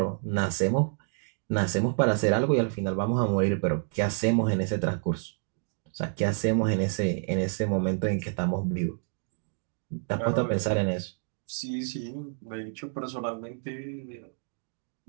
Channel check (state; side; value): silent; left; 59 dB below the other